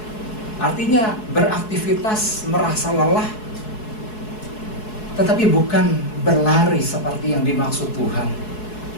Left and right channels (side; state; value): right; late; 4.7 ms